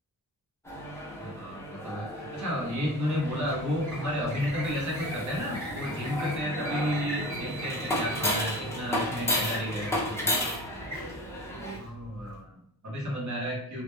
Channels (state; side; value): normal; both; correlation 0.36